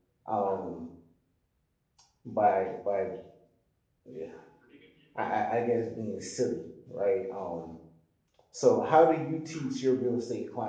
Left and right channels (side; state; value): both; identical; correlation 1.00